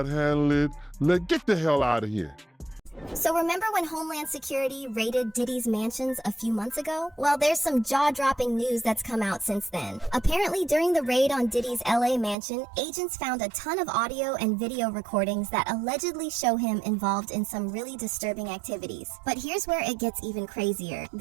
handle it. Get the hell out of here. So remember when Homeland Security raided Diddy's mansions a few months ago? Well, there's some jaw-dropping news that's come out since then. Apparently, during the raid on Diddy's LA mansion, agents found a ton of audio and video recordings that allegedly show him involved in some really disturbing activities. But here's where it gets even crazier.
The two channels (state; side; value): drops out; left; at 12.4 s